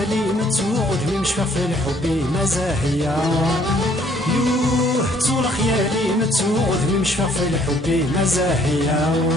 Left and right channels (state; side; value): normal; both; correlation 0.63